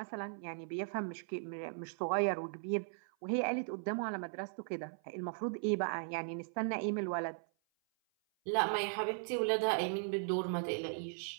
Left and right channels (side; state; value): left; silent; 53 dB below the other